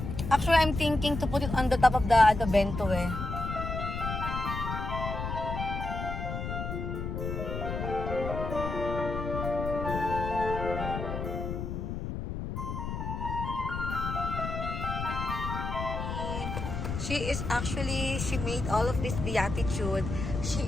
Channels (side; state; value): left; noise; rumble, 4 dB below the sound